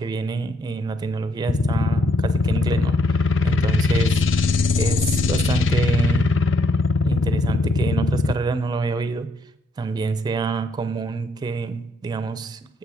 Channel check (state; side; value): normal; both; correlation 0.73